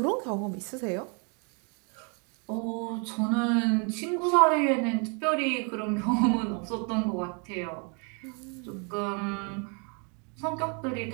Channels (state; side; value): quieter; left; 36.6 dB